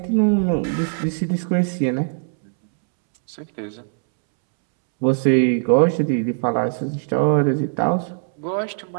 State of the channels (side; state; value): left; silent; 65 dB below the other